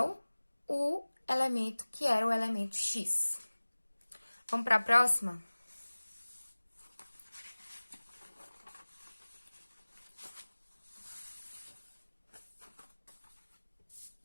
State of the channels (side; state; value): both; inverted; correlation -1.00